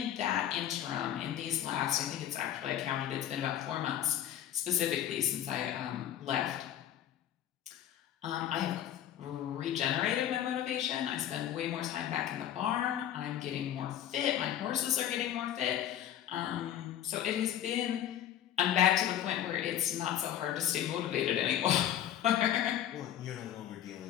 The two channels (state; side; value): quieter; right; 11.1 dB